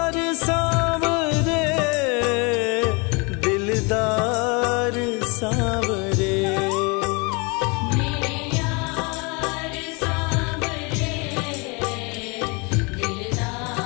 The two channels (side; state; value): right; quieter; 30.0 dB